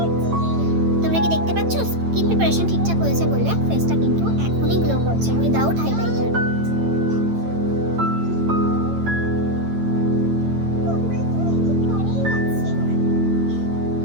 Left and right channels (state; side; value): late; left; 9.0 ms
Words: তোমরা কি দেখতে পাচ্ছ স্কিন প্রিপারেশন ঠিকঠাক হয়েছে বলে ফেসটা কিন্তু এখনই গ্লো করছে উইদাউট হাইলাইটার।